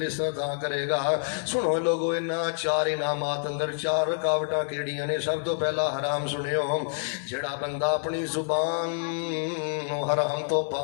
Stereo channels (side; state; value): right; silent; 60 dB below the other